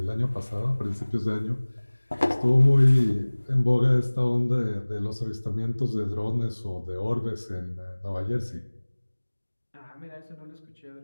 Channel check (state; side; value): inverted; both; correlation -1.00